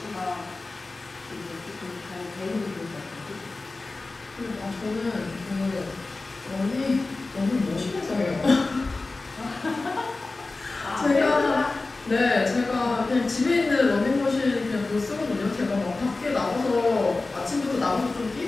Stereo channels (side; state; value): right; quieter; 3.5 dB